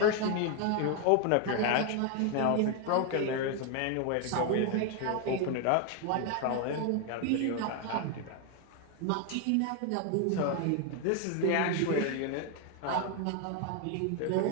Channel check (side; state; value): both; different; correlation 0.01